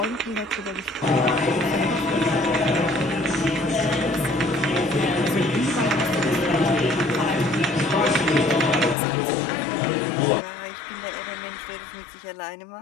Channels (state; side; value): drops out; right; at 9.0 s